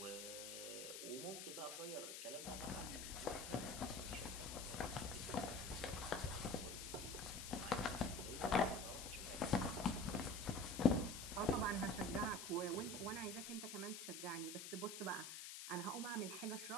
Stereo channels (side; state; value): left; noise; hiss, 7 dB below the sound